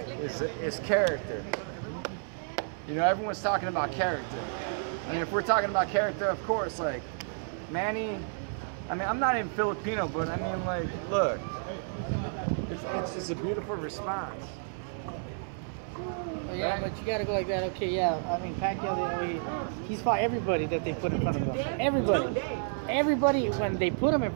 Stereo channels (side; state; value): left; silent; digital silence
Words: is character. You know, everyone's talking about character. I mean, if we're talking about character, of course, like Manny. I mean, I'm not even Filipino, but I mean, like, look, it's a beautiful response. yeah, but you gotta go like that. Okay, yeah. I mean, Pacquiao, he's fought everybody that they put in front of him. Everybody when they put him in